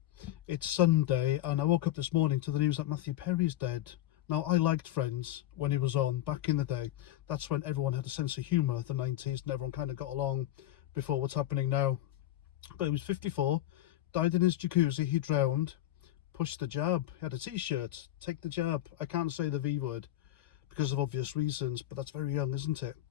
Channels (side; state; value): right; quieter; 13.9 dB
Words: It's Sunday, and I woke up this morning to the news that Matthew Perry's dead. Now, I liked Friends when he was on back in the day. That's when everyone had a sense of humour, the 90s, and everyone kind of got along before what's happening now. But he was 54, died in his jacuzzi, he drowned, pushed the jab. He had a t-shirt, take the jab. I can't say the V word because of obvious reasons, but that's very young, isn't it?